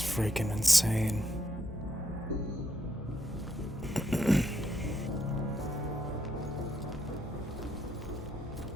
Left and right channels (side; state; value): both; normal; correlation 0.77